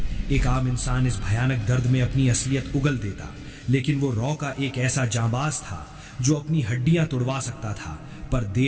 एक आम इंसान इस भयानक दर्द में अपनी असलियत उगल देता, लेकिन वो रॉ का एक ऐसा जांबाज था जो अपनी हड्डियां तोड़वा सकता था, पर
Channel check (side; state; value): both; identical; correlation 1.00